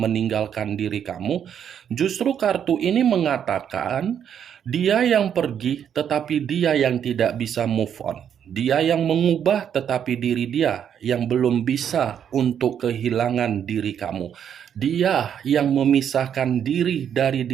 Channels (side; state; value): left; quieter; 8.7 dB